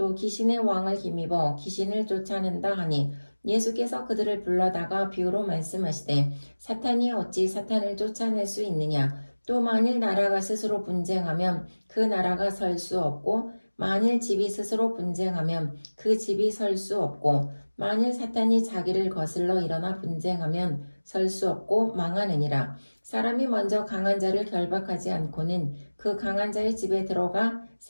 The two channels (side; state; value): both; inverted; correlation -1.00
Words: 귀신의 왕을 힘입어 귀신을 쫓아낸다 하니 예수께서 그들을 불러다가 비유로 말씀하시되 사탄이 어찌 사탄을 쫓아낼 수 있느냐. 또 만일 나라가 스스로 분쟁하면 그 나라가 설 수 없고 만일 집이 스스로 분쟁하면 그 집이 설 수 없고 만일 사탄이 자기를 거슬러 일어나 분쟁하면 설 수 없고 망하느니라. 사람이 먼저 강한 자를 결박하지 않고는 그 강한 자의 집에 들어가